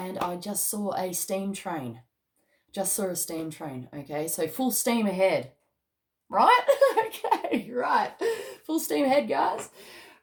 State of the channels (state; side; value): identical; both; correlation 1.00